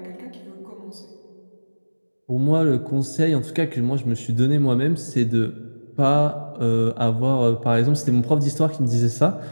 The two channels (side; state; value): both; inverted; correlation -1.00